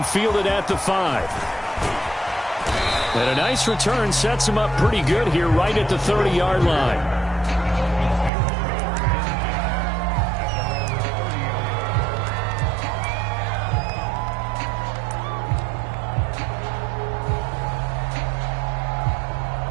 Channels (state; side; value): drops out; left; at 8.3 s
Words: fielded at the 5. And a nice return sets him up pretty good here right at the 30-yard line.